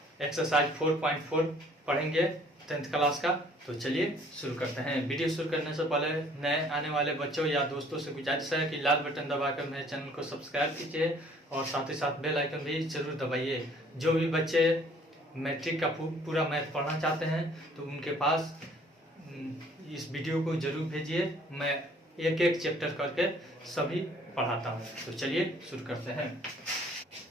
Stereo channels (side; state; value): both; normal; correlation 0.57